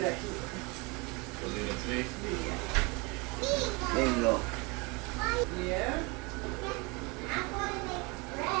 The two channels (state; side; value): quieter; left; 27.9 dB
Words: there you go.